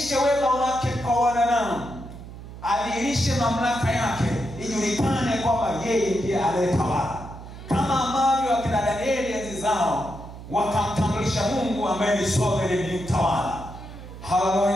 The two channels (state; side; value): noise; right; hum, 14 dB below the sound